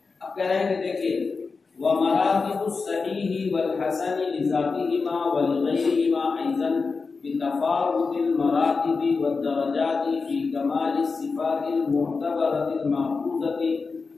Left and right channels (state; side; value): quieter; right; 4.5 dB